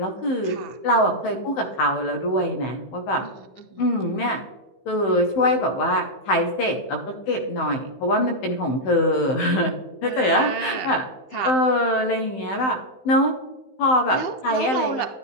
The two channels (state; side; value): late; right; 16 ms